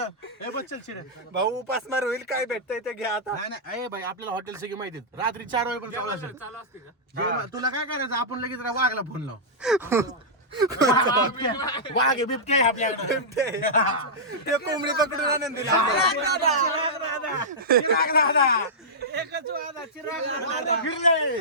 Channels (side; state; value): both; normal; correlation -0.12